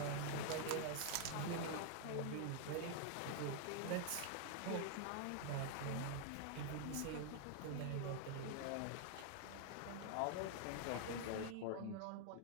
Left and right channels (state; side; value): different; both; correlation 0.00